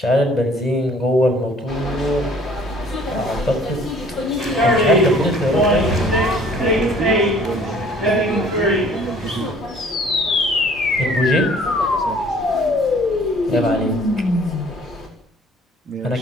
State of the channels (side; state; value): both; normal; correlation 0.55